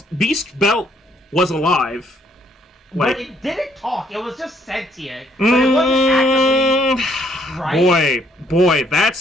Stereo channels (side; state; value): both; normal; correlation 0.67